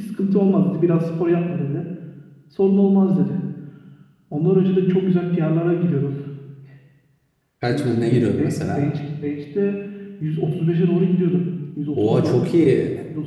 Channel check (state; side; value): identical; both; correlation 1.00